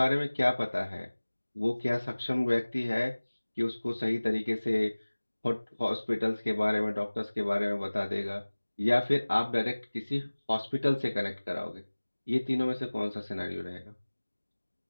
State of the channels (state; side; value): inverted; both; correlation -1.00